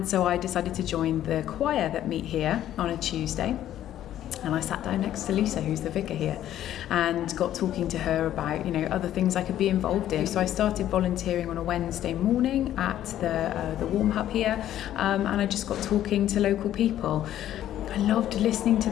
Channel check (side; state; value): right; quieter; 12.0 dB